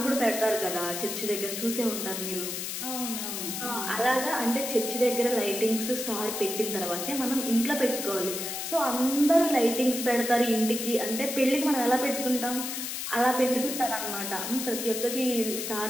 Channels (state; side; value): noise; left; hiss, 4 dB below the sound